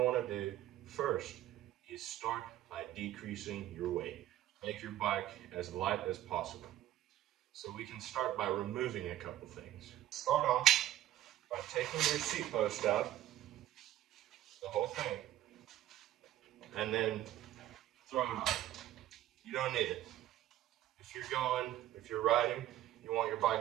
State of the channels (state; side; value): quieter; left; 13.4 dB